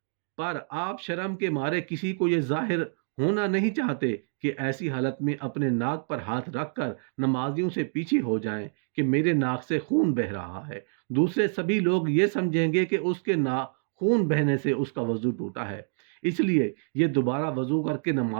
پر آپ شرم کے مارے کسی کو یہ ظاہر ہونا نہیں چاہتے کہ ایسی حالت میں اپنے ناک پر ہاتھ رکھ کر نمازیوں سے پیچھے ہو جائیں کہ میرے ناک سے خون بہ رہا ہے، دوسرے سبھی لوگ یہ سمجھیں گے کہ اس کے ناک خون بہنے سے اس کا وضو ٹوٹا ہے، اس لیے یہ دوبارہ وضو کر کے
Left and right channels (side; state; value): left; silent; digital silence